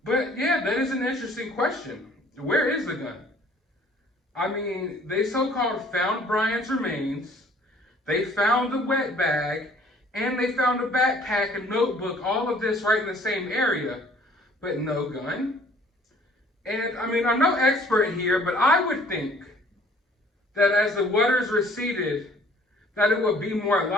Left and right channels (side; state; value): both; normal; correlation 0.56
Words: But yeah, that is an interesting question. Where is the gun? I mean, they so-called found Brian's remains, they found the wet bag, and they found a backpack, a notebook, all of this right in the same area, but no gun. And I mean, I'm no expert here, but I would think that as the waters receded, that it would be more